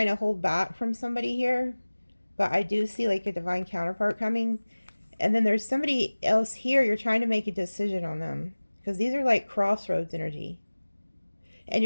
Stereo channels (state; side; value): inverted; both; correlation -1.00